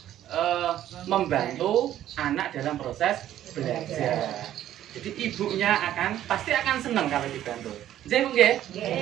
membantu anak dalam proses belajar. Jadi ibunya pasti akan senang kalau dibantu. Jadi Bu nggih?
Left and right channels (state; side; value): quieter; left; 12.1 dB